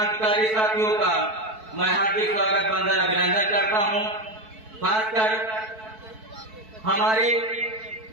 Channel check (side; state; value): left; late; 4.6 ms